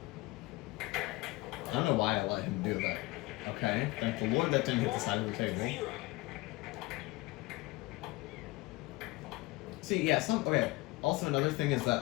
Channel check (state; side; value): quieter; right; 21.4 dB